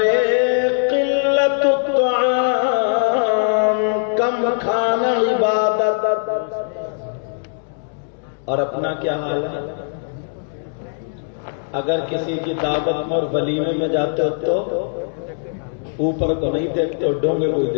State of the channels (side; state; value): right; silent; digital silence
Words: 1 قلت الطعام، کم کھانا عبادت، اور اپنا کیا حال ہے؟ اگر کسی کی دعوت میں اور ولیمے میں جاتے ہو تو اوپر کو نہیں دیکھتے ہو، ڈونگے کو ہی